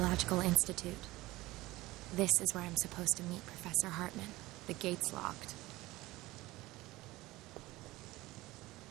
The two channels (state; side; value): quieter; left; 19.0 dB